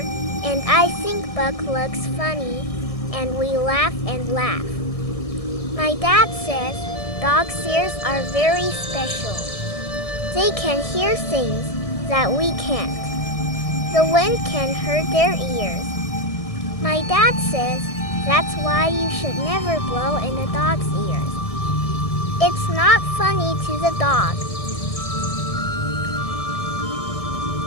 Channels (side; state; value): right; late; 1.6 ms